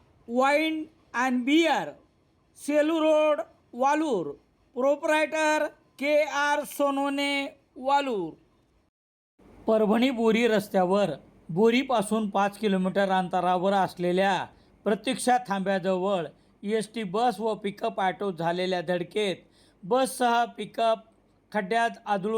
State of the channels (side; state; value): both; identical; correlation 1.00